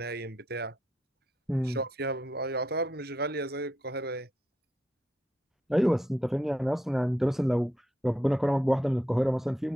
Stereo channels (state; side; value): normal; both; correlation 0.81